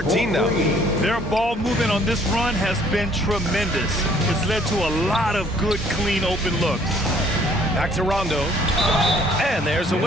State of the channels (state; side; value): normal; both; correlation 0.60